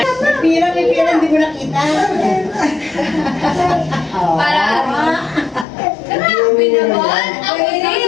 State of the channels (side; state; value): right; drops out; at 5.7 s